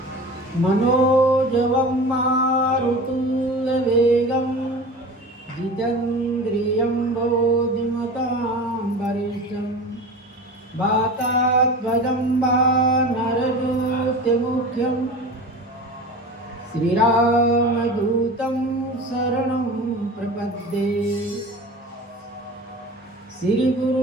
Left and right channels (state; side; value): normal; both; correlation 0.34